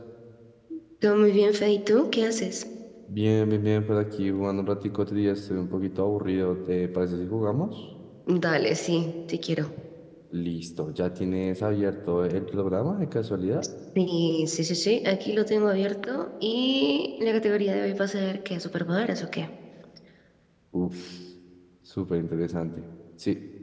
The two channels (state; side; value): identical; both; correlation 1.00